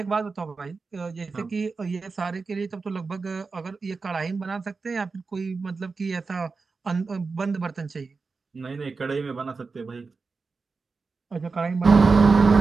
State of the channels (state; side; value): quieter; left; 4.4 dB